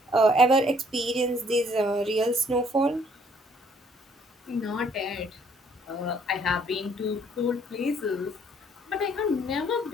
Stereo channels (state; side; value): normal; both; correlation 0.63